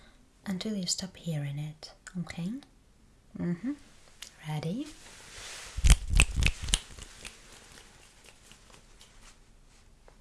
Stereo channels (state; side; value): identical; both; correlation 1.00